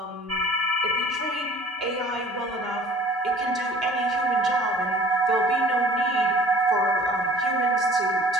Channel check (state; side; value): normal; both; correlation 0.49